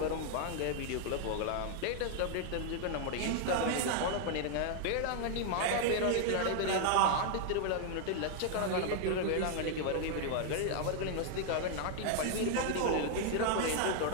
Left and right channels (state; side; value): different; both; correlation 0.00